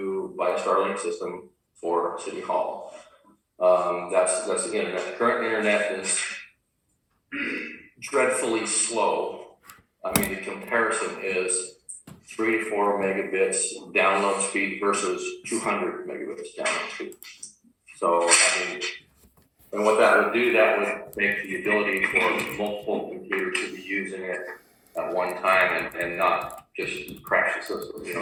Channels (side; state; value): both; identical; correlation 1.00